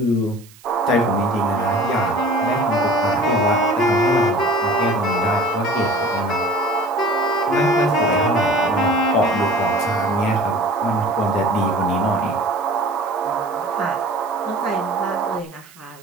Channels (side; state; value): right; noise; hiss, 24 dB below the sound